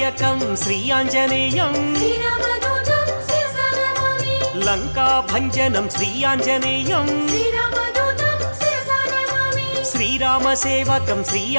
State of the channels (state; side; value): inverted; both; correlation -1.00